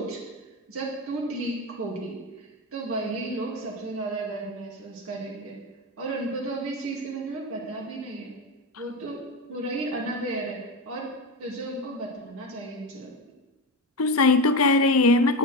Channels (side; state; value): both; normal; correlation 0.18